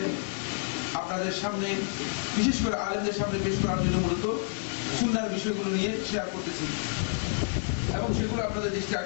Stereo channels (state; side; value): silent; right; digital silence